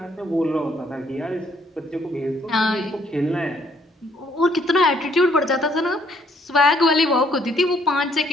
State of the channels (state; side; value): normal; both; correlation 0.67